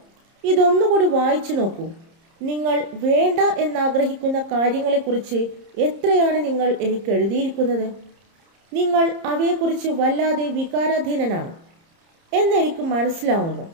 ഇതൊന്നുകൂടി വായിച്ചു നോക്കൂ. നിങ്ങൾ വേണ്ട എന്നാഗ്രഹിക്കുന്ന കാര്യങ്ങളെക്കുറിച്ച് എത്രയാണ് നിങ്ങൾ എനിക്ക് എഴുതിയിരിക്കുന്നത്. നിങ്ങൾ അവയെക്കുറിച്ച് വല്ലാതെ വികാരാധീനനാണ് എന്നെനിക്ക് മനസ്സിലാവുന്നു.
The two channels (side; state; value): left; late; 30 ms